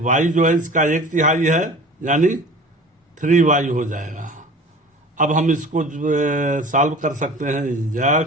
y जो है इसका 1/3 है, यानी 3y हो जाएगा। अब हम इसको सॉल्व कर सकते हैं।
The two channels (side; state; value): both; normal; correlation 0.41